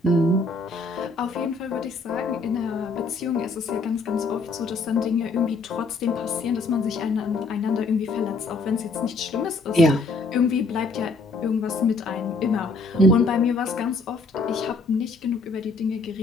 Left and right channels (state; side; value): quieter; right; 3.6 dB